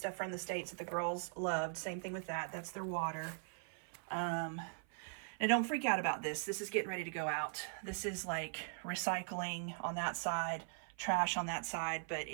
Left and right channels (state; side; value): silent; left; 51 dB below the other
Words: from the States that the girls loved. Same thing with that. That's their water. Now, don't freak out about this. This is getting ready to go out. This is like recycling on that side, trash on that side. But